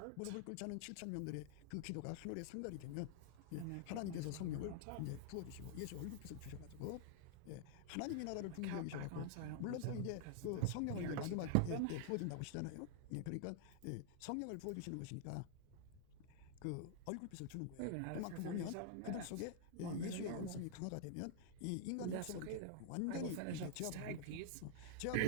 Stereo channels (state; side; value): different; both; correlation -0.01